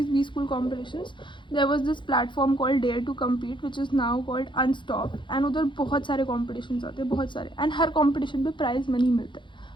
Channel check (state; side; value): late; right; 0.23 ms